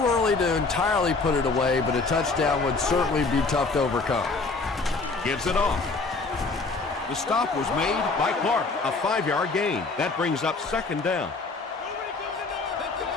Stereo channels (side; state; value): right; quieter; 3.9 dB